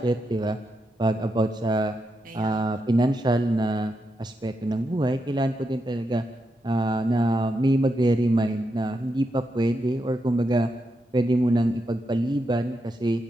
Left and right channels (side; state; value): both; normal; correlation 0.84